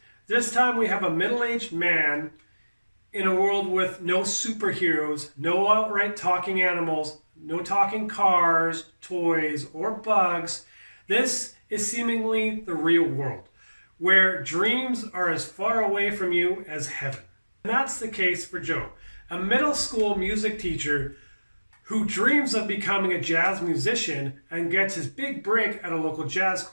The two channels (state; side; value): inverted; both; correlation -1.00